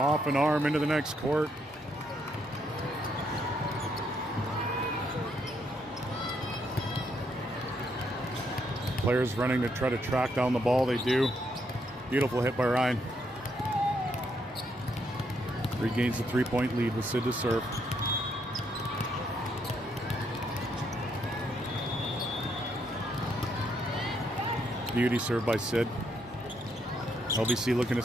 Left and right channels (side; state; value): both; normal; correlation 0.75